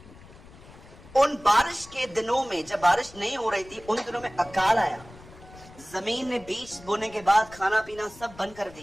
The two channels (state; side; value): noise; left; rumble, 20 dB below the sound